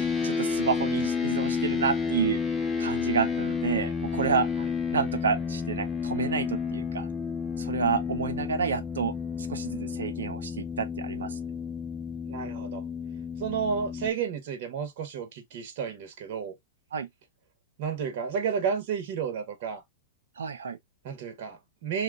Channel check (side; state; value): both; normal; correlation 0.00